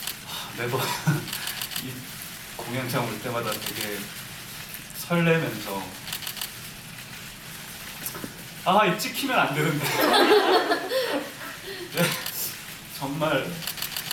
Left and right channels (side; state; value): both; identical; correlation 1.00